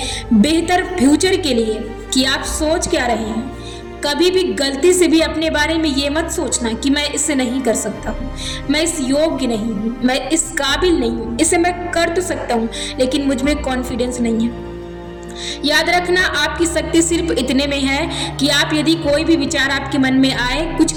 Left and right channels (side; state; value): both; identical; correlation 1.00